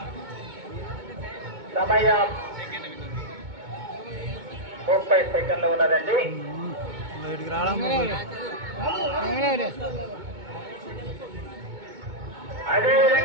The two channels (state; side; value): late; left; 2.2 ms